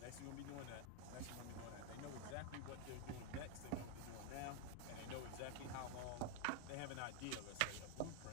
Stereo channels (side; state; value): both; different; correlation 0.01